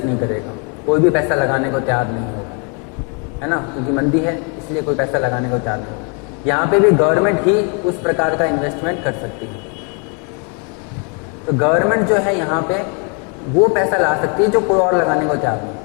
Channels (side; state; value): right; quieter; 36.4 dB